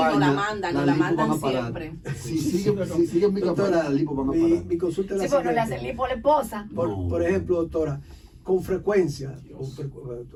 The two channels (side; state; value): both; identical; correlation 1.00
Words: la mandan siempre. Si siguen mi campaña, la lipo van a parar. Mi consulta es la Sí, bueno, le siguiente. hacen lipo a la esposa. Por ejemplo, doctora, con frecuencia,